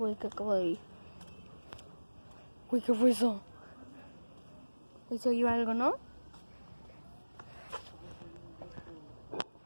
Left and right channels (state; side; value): inverted; both; correlation -1.00